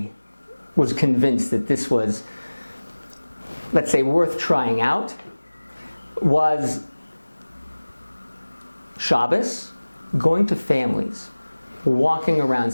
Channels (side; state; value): both; inverted; correlation -1.00